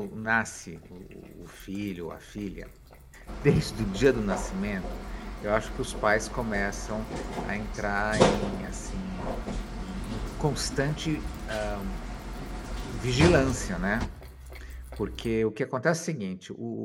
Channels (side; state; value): both; identical; correlation 1.00